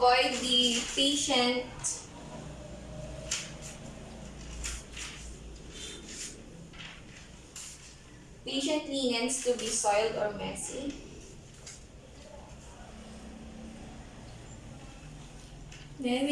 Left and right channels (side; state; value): both; identical; correlation 1.00